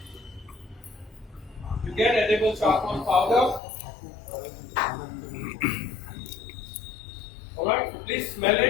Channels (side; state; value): right; drops out; at 3.6 s